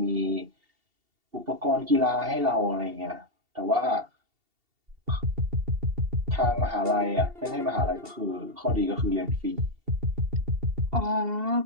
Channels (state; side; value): late; left; 2.7 ms